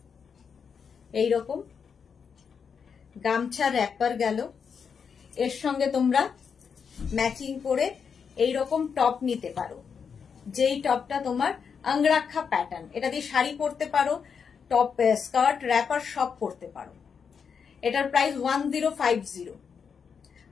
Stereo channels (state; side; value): quieter; right; 6.4 dB